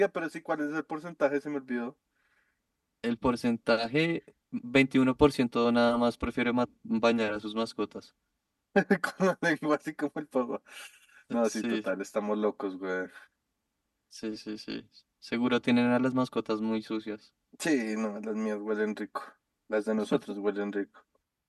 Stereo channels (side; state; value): both; identical; correlation 1.00